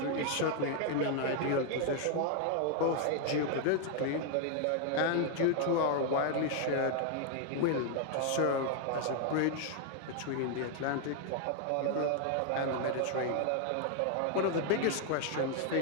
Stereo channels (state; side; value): different; both; correlation 0.00